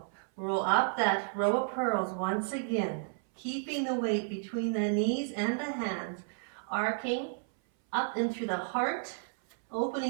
Roll up that row of pearls once again. Keeping the weight between the knees and the hands. Arcing up and through the heart.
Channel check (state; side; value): silent; left; 56 dB below the other